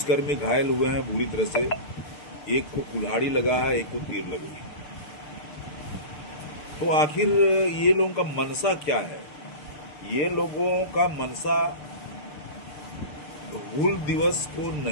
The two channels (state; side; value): late; right; 6.7 ms